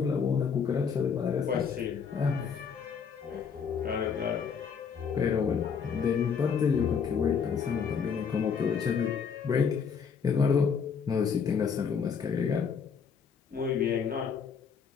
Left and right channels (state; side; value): quieter; right; 6.4 dB